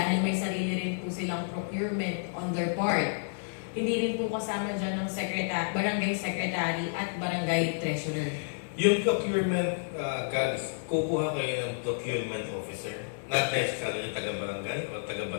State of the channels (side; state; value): right; silent; 58 dB below the other